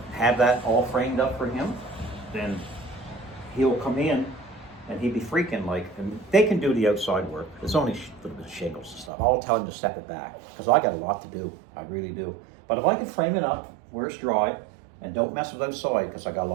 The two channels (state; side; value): drops out; left; at 9.1 s